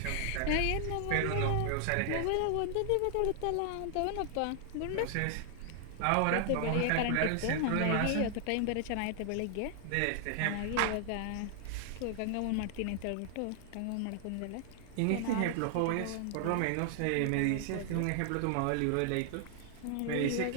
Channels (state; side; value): different; both; correlation 0.00